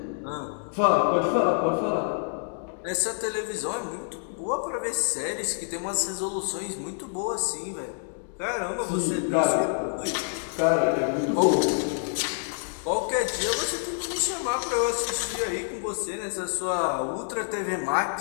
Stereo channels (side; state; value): right; silent; digital silence